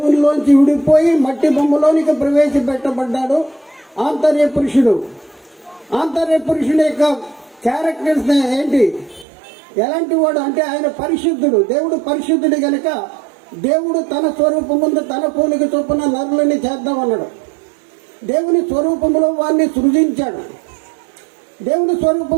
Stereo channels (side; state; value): left; drops out; at 9.2 s